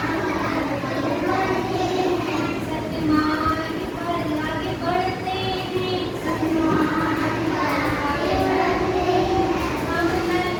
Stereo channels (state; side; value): identical; both; correlation 1.00